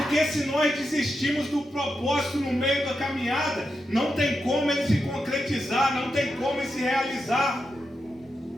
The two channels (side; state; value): both; normal; correlation 0.87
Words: se nós desistimos do propósito no meio da caminhada, não tem como ele se concretizar, não tem como ele se realizar.